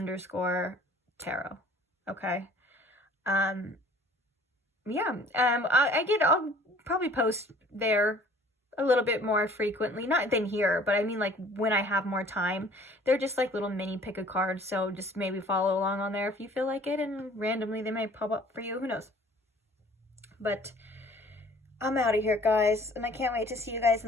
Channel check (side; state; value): both; normal; correlation 0.53